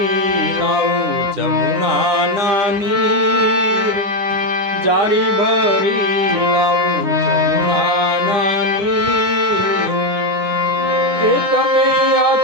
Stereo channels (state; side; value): late; left; 10 ms